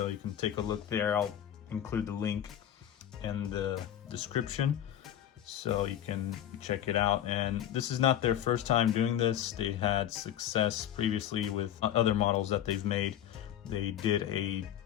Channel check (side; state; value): right; quieter; 10.8 dB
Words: you can take a look there. I'll include the link in the description so you can check it out. And this is not their first time doing this. They had success previously with other models that they've made. They did a